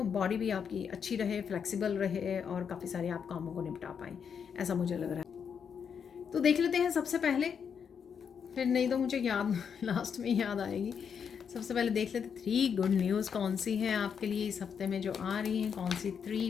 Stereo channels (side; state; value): right; quieter; 7.1 dB